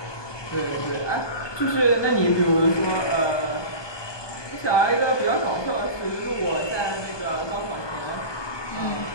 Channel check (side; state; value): right; late; 1.2 ms